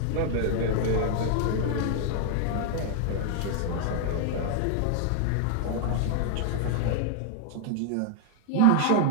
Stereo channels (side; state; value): both; different; correlation 0.00